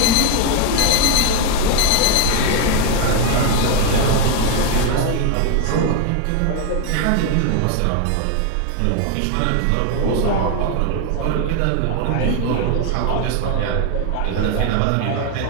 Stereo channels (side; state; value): both; different; correlation 0.01